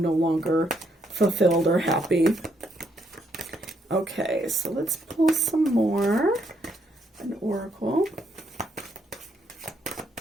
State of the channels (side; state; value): both; normal; correlation 0.75